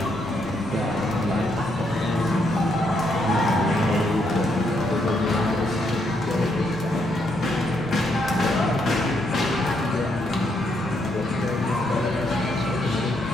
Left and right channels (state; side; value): normal; both; correlation 0.76